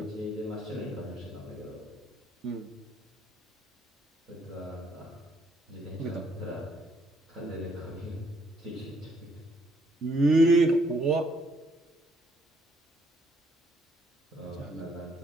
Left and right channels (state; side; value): normal; both; correlation 0.68